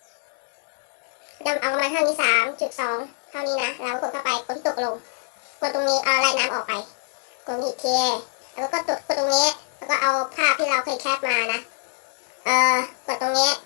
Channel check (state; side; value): silent; right; digital silence